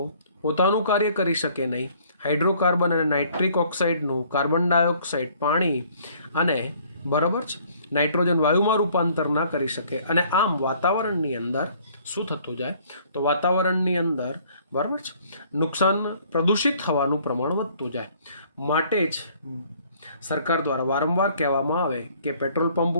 પોતાનું કાર્ય કરી શકે નહીં. હાઇડ્રોકાર્બન અને નાઇટ્રિક ઓક્સાઇડનું કાર્બન ડાયોક્સાઇડ, પાણી અને બરાબર છે નાઇટ્રોજન વાયુમાં રૂપાંતર ના કરી શકે. અને આમ વાતાવરણની અંદર શું થતું જાય? તો વાતાવરણની અંદર બરાબર છે પ્રદૂષિત થવાનું પ્રમાણ વધતું જાય. માટે જ સરકાર દ્વારા વારંવાર કહેવામાં આવે કે પેટ્રોલ પંપ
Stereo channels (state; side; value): inverted; both; correlation -0.59